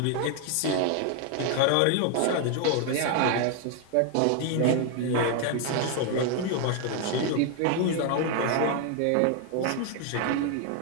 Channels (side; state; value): both; different; correlation 0.01